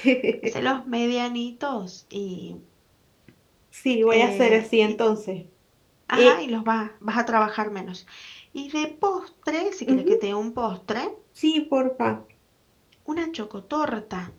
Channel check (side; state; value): both; identical; correlation 1.00